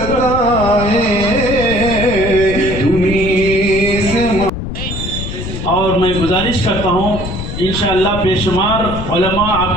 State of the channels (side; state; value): left; noise; rumble, 6 dB below the sound